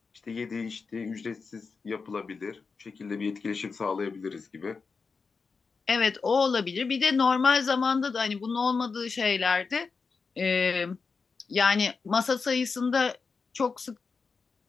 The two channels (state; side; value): quieter; right; 4.8 dB